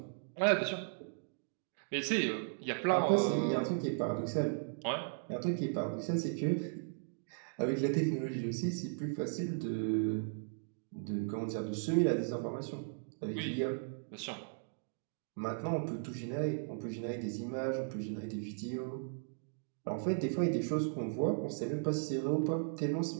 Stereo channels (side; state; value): left; silent; digital silence